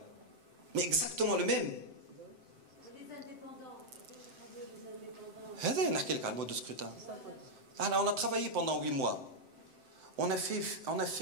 Mais exactement le même. Les indépendants. Le mode de scrutin. Alors, on a travaillé pendant 8 mois. On a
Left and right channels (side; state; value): left; late; 7.8 ms